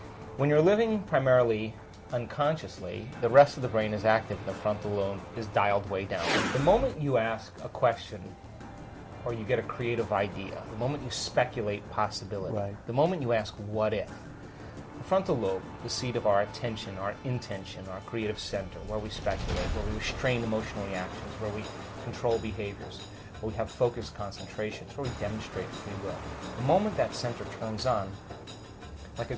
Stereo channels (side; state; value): both; identical; correlation 1.00